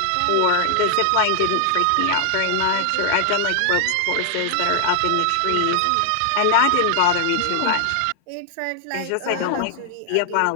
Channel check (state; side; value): different; both; correlation 0.00